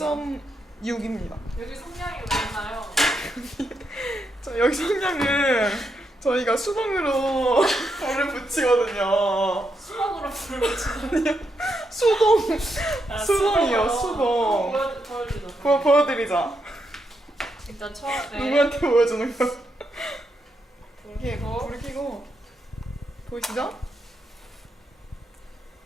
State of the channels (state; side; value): normal; both; correlation 0.82